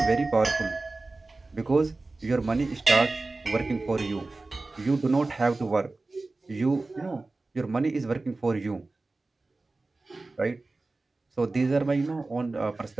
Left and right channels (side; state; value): left; quieter; 3.3 dB